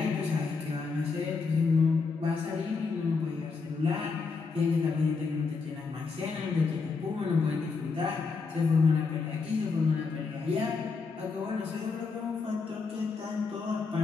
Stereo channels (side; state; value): right; quieter; 4.7 dB